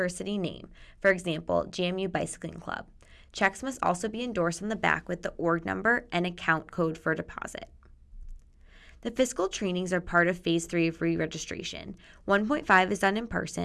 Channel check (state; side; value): identical; both; correlation 1.00